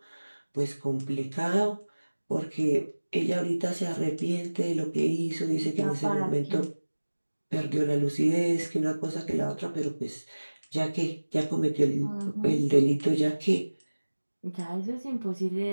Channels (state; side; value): inverted; both; correlation -1.00